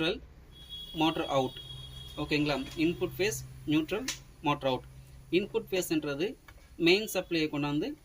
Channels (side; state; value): both; identical; correlation 1.00